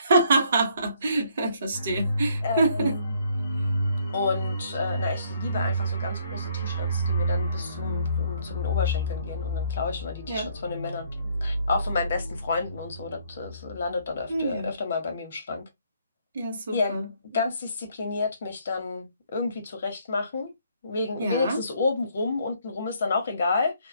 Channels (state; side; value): inverted; both; correlation -0.66